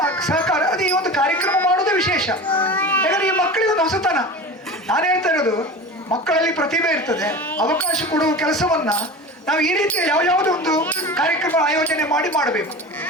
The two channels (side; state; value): both; normal; correlation 0.32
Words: ಸಹಕಾರ, ಅದು ಈ ಒಂದು ಕಾರ್ಯಕ್ರಮ ಮಾಡೋದೇ ವಿಶೇಷ. ಯಾಕಂದರೆ ಈ ಮಕ್ಕಳಿಗೆ ಒಂದು ಹೊಸತನ. ನಾನು ಹೇಳ್ತಾ ಇರೋದು, ಮಕ್ಕಳಲ್ಲಿ ಪ್ರತಿಭೆ ಇರ್ತದೆ, ಅವಕಾಶ ಕೊಡುವ ಕೆಲಸವನ್ನು ನಾವು ಈ ರೀತಿ ಯಾವುದೋ ಒಂದು ಕಾರ್ಯಕ್ರಮ ಆಯೋಜನೆ ಮಾಡಬೇಕು.